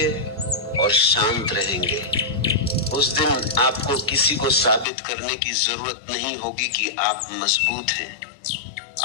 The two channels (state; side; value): drops out; right; at 4.9 s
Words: और शांत रहेंगे। उस दिन आपको किसी को साबित करने की जरूरत नहीं होगी कि आप मजबूत हैं,